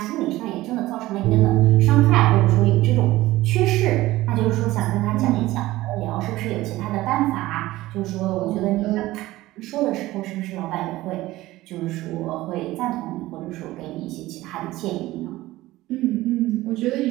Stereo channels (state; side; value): quieter; left; 17.3 dB